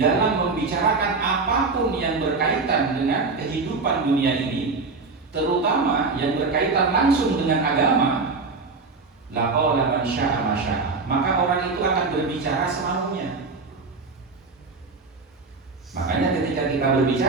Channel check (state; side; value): quieter; left; 4.1 dB